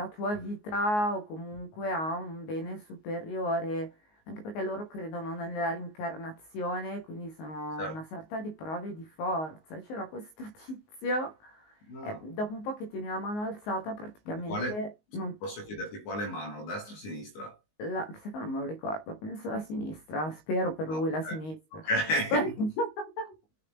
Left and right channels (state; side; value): late; right; 19 ms